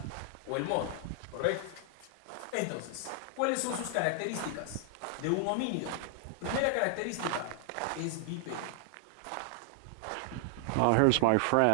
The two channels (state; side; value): different; both; correlation 0.00